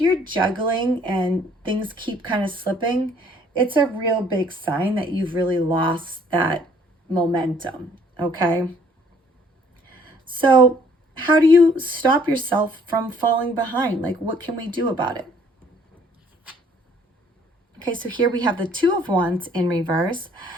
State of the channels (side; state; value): both; normal; correlation 0.60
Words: you're juggling and things keep kind of slipping, it's a real big sign that you've really lost that momentum, okay? So how do you stop yourself from falling behind? Like, what can we do about it? Okay, so here we have the 2 of Wands in reverse.